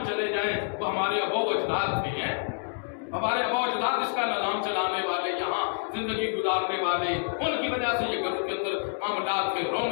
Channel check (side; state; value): right; silent; digital silence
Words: چلے جائیں تو ہمارے ابا و اجداد تھے، ہمارے ابا و اجداد اس کا نظام چلانے والے، یہاں زندگی گزارنے والے، ان کی وجہ سے یہ گھروں کے اندر معاملات تھے،